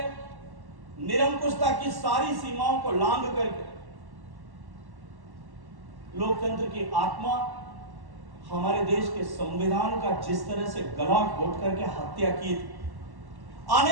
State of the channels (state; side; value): late; left; 1.1 ms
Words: निरंकुशता की सारी सीमाओं को लांघ करके लोकतंत्र की आत्मा, हमारे देश के संविधान का जिस तरह से गला घोट करके हत्या की थी,